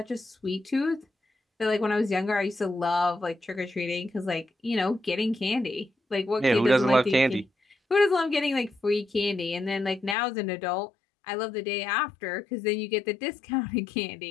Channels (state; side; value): drops out; right; at 10.2 s